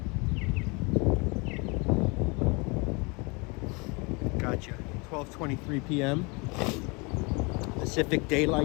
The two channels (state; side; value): quieter; right; 29.1 dB